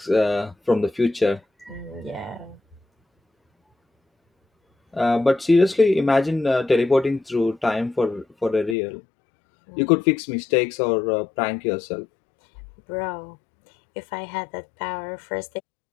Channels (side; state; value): right; drops out; at 8.8 s